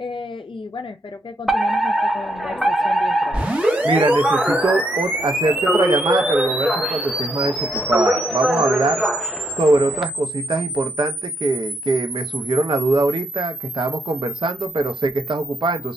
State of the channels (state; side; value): normal; both; correlation 0.77